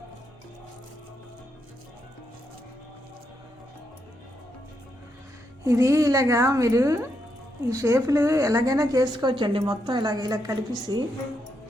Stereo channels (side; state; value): both; normal; correlation 0.81